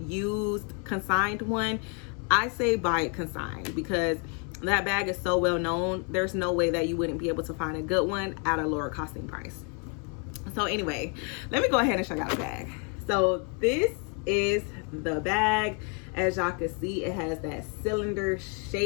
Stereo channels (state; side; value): quieter; right; 37.6 dB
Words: consigned one, I say buy it consigned, because that bag is so well known. There's no way that you wouldn't be able to find a good one at a lower costing price. So anyway, let me go ahead and show y'all the bag. So this is the bag. As y'all can see, it has that cylinder